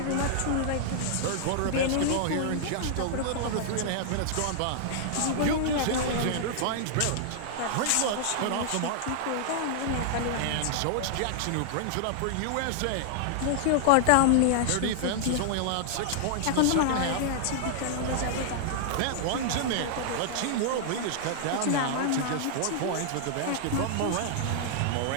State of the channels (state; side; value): different; both; correlation -0.01